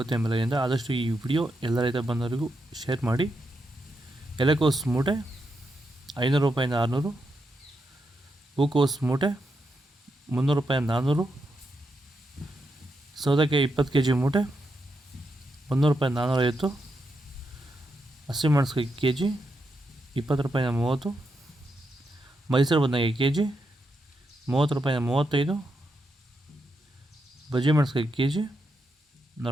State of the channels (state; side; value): normal; both; correlation 0.83